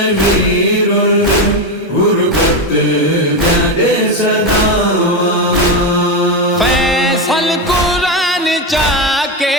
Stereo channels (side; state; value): both; normal; correlation 0.12